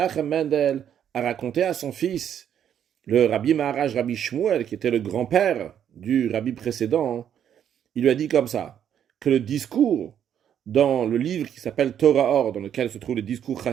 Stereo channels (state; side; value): quieter; left; 9.3 dB